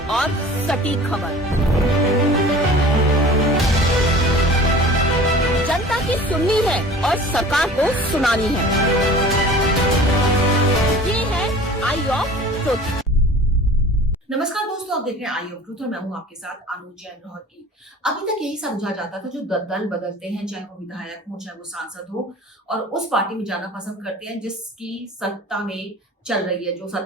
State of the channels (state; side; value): normal; both; correlation 0.43